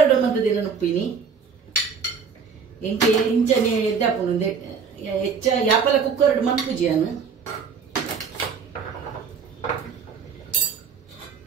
ಮಂತದಿನ ನುಪ್ಪಿನಿ MK ಇಂಚನೆ ಎದ್ದಾಪುನು ಹೆಚ್ಚ ಯಾಪಲ ಕುಕ್ಕರ್ ಮನ್ಪುಜಿಯಾನು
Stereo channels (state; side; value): quieter; left; 6.0 dB